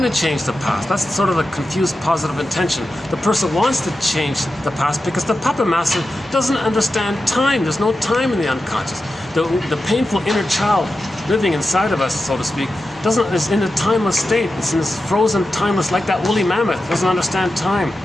to change the past. That's sort of a confused positive intention. The person wants to change the past because the puppet master doesn't understand time. There's no time in the unconscious. The painful inner child living inside of us, so to speak, is in a timeless state. It's in this frozen, timeless, like that woolly mammoth. Doesn't understand time.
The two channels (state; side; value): normal; both; correlation 0.91